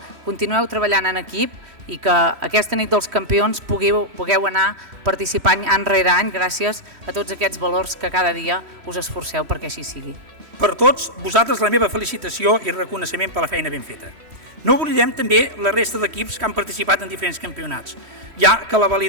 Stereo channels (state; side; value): late; left; 3.1 ms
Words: continueu treballant en equip i que aquesta nit dels campions pugueu anar participant any rere any gràcies a tots aquests valors que cada dia us esforceu perquè així sigui. Per tots vosaltres la meva felicitació i reconeixement per la feina ben feta. No oblidem també la resta d'equips que han participat en diferents campionats, ja que la